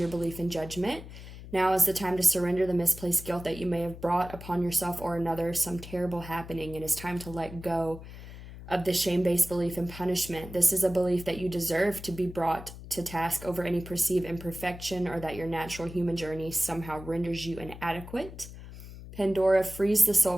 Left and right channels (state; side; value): noise; left; hum, 14 dB below the sound